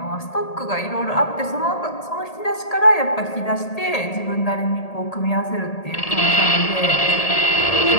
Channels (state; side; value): late; right; 1.8 ms